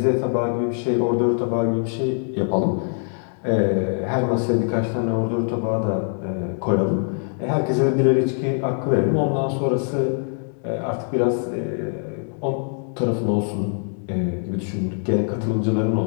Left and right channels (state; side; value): silent; right; 57 dB below the other